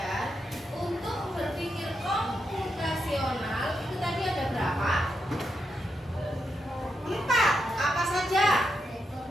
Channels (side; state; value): both; normal; correlation 0.84